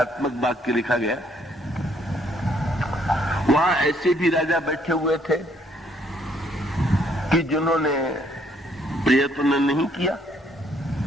वाक्य लिखा गया। वहां ऐसे भी राजा बैठे हुए थे कि जिन्होंने प्रयत्न नहीं किया,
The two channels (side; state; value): both; normal; correlation 0.67